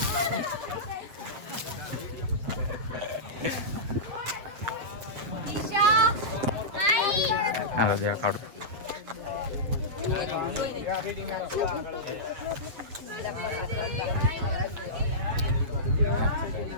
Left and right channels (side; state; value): left; late; 8.0 ms